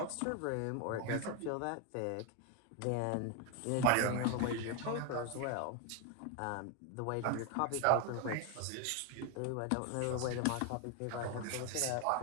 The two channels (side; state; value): both; different; correlation 0.01